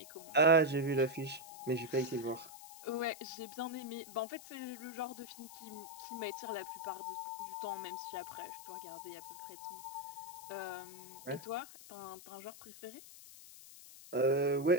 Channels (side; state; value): left; noise; hiss, 16 dB below the sound